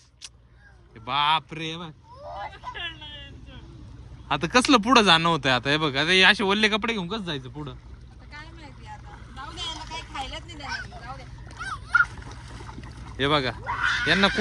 बाप रे बघ. आता कसलं पुढं जाणं होतंय आता हे बघ. आता हे असे ओल्ले कपडे घेऊन कसं जायचं पुढं. काय माहिती आता. जाऊ दे, याला काही खायलाच नाही देणार. जाऊ दे. हे बघा यांना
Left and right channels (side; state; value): both; identical; correlation 1.00